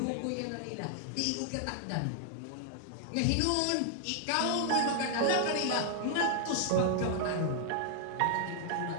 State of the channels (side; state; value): both; different; correlation -0.01